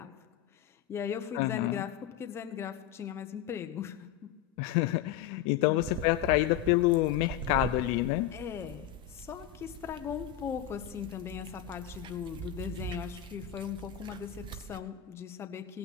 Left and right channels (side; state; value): right; quieter; 11.0 dB